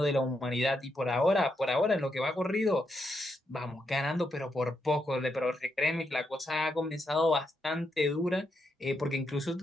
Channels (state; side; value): normal; both; correlation 0.81